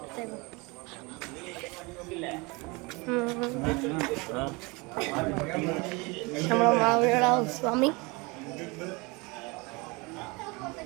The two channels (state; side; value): quieter; left; 26.7 dB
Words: നമ്മുടെ മാമിയുടെ ഹൗസ് വാമി.